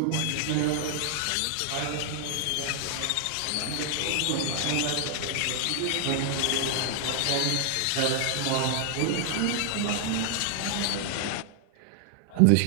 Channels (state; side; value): different; both; correlation 0.00